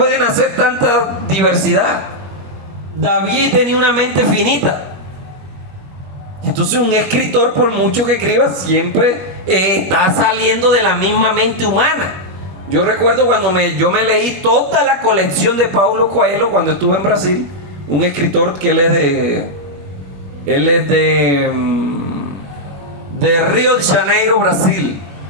hacer tanta diversidad. David tenía una mente finita. Entonces un escritor, por mucho que escriba, siempre está saliendo de la misma mente humana. Yo recuerdo cuando yo me leí toda la colección de Paulo Coelho cuando estuve en Brasil. Un escritor que él es de Río de Janeiro, Brasil.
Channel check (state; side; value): late; left; 21 ms